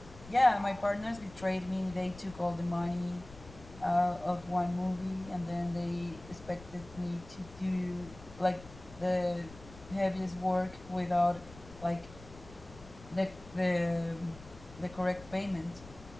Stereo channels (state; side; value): noise; left; rumble, 18 dB below the sound